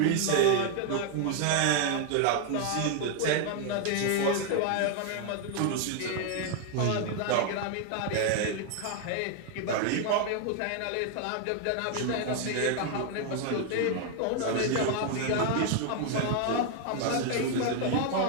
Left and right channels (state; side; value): different; both; correlation 0.00